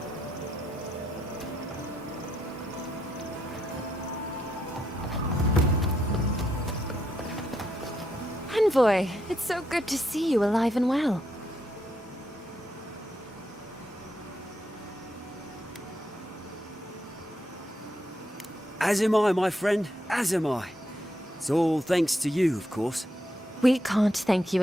Envoy, it's so good to see you alive and well. As am I, my friend. As am I. It's all thanks to you, of course. We can't thank you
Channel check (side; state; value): both; normal; correlation 0.79